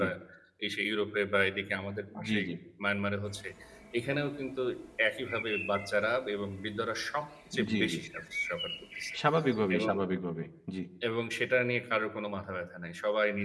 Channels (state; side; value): identical; both; correlation 1.00